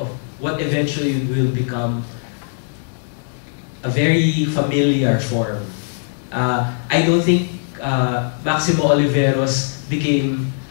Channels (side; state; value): right; silent; digital silence